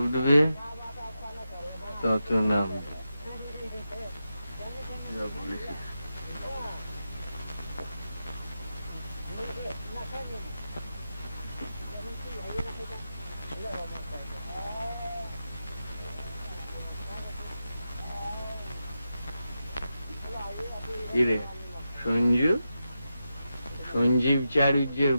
উঠবে তত নাম। যা বলেছিস। কিরে সঞ্জু, সঞ্জীব চারুজ্যের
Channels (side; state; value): both; inverted; correlation -0.89